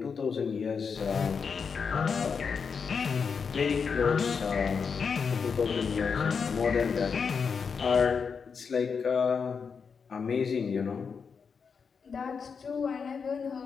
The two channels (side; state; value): right; quieter; 5.8 dB